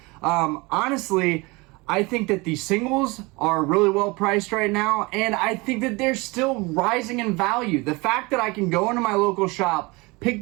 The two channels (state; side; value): quieter; left; 25.0 dB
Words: Honestly, I think that the singles are really well priced right now, and I think that they're still rising in value. The fact that I can go into my local shop,